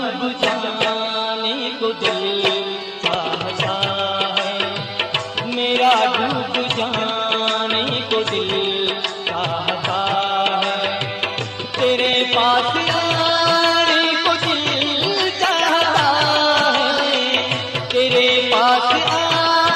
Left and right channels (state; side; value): identical; both; correlation 1.00